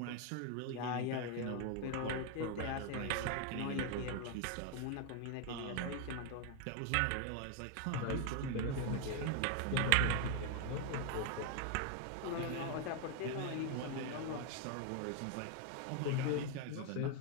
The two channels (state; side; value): different; both; correlation 0.00